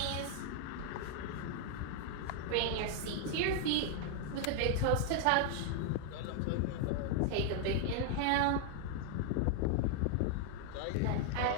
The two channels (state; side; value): different; both; correlation 0.00